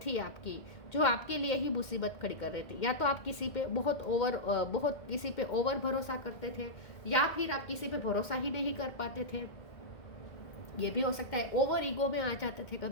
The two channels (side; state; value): right; late; 2.1 ms